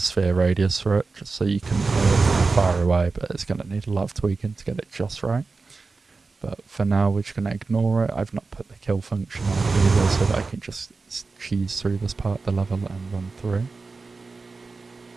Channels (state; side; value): quieter; left; 4.1 dB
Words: radius for it, just so you can hear it from far away, but it's going to need a lot of tweaking to get it just right. But for now, we're just going to ignore it. I've not put the kill function on either, so that I can just cheese through this part of the level and run through.